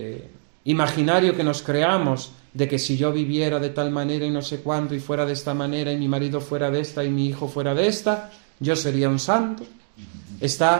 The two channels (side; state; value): left; silent; digital silence